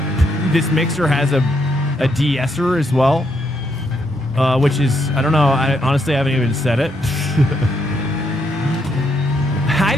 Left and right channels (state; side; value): normal; both; correlation 0.77